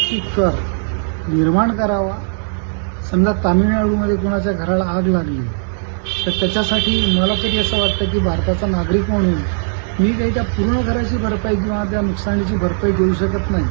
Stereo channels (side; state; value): left; silent; digital silence